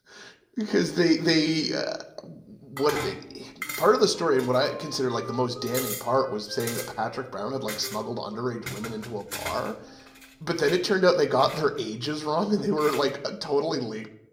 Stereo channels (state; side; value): identical; both; correlation 1.00